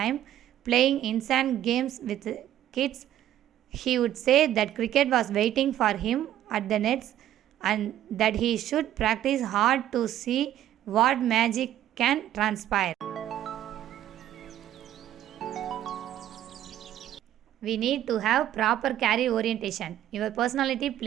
playing insane games with kids. He would say that cricket was waiting for him at the nets and that he should practice hard to see what magic can transpire. We need to have proper career orientation. Your personality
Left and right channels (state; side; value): quieter; left; 12.1 dB